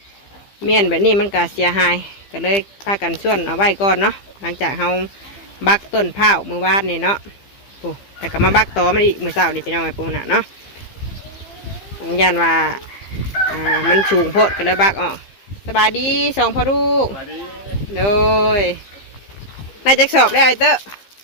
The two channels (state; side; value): late; right; 15 ms